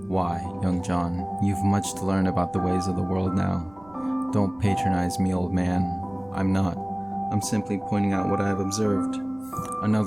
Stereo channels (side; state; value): right; noise; rumble, 27 dB below the sound